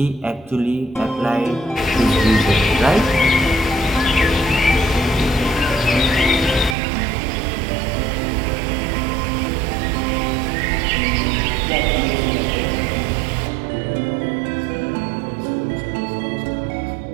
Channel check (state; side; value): drops out; left; at 6.8 s